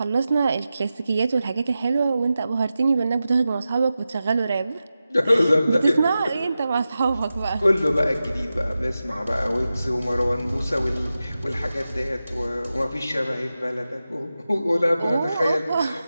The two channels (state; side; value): inverted; both; correlation -0.93